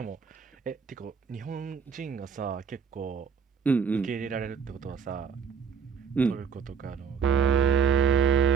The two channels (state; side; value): quieter; left; 6.5 dB